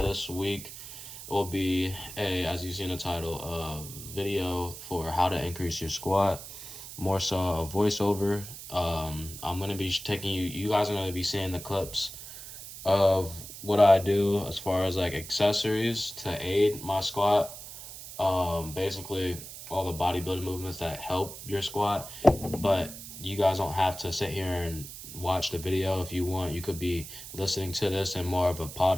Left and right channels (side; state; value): right; noise; hiss, 12 dB below the sound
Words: this week will be as you see in the title, a video for how to increase your squat, more so a voiceover. I'm gonna be taking you guys are gonna be seeing the clips of what I do as far as like accessories to aid my squat. Basically all the bodybuilding movements that help your squat, but you guys don't have to sit here and watch the video. If you want, you could be listening to this in more of a